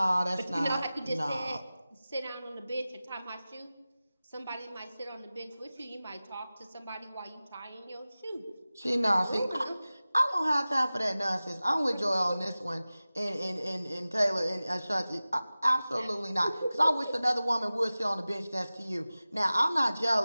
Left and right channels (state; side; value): inverted; both; correlation -0.97